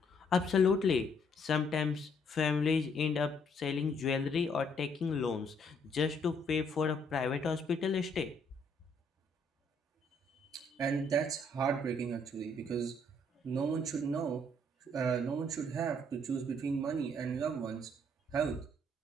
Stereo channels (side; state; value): both; normal; correlation 0.67